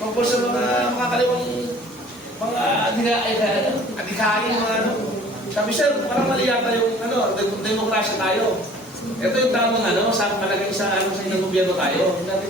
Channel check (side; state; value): both; normal; correlation 0.50